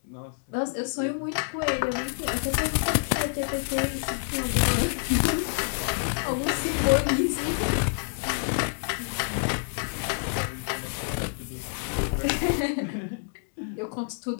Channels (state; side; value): silent; right; digital silence